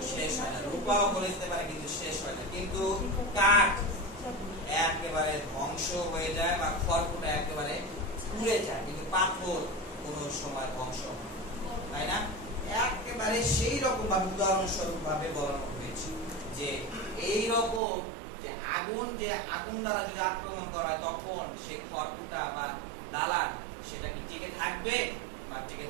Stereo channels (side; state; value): left; drops out; at 17.8 s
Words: শেষ হয় না, রূপাও গলে যেতে পারে কিন্তু শেষ হয় না, কিন্তু কাঠ একেবারে ধ্বংস হয়ে যায়, বা খড়কুটা একেবারে পুড়ে যায়, কিন্তু পাথর কোন সময় ধ্বংস হয়, তাই না? একেবারে সেই রকম ভাবে উদাহরণস্বরূপ ভাবে বলানো হয়েছে যে এই রকম যে আগুন দ্বারা যদি আক্রমণ করা হয়, তখন সেই খড়কুটা বা দালান সেটা কি টিকে থাকবে বা টিকে